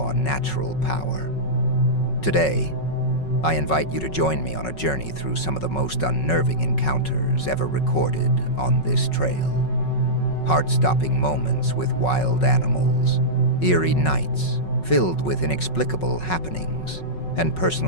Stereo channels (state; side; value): late; right; 5.4 ms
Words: natural power. Today, I invite you to join me on a journey through some of the most unnerving encounters ever recorded on this trail. Heart-stopping moments with wild animals, eerie nights filled with inexplicable happenings, and